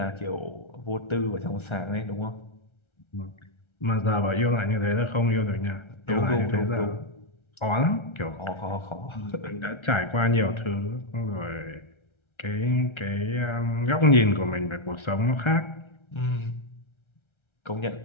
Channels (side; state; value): right; late; 1.3 ms